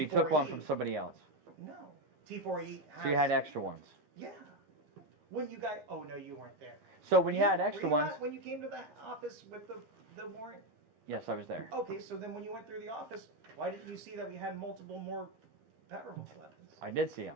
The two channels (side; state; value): left; late; 13 ms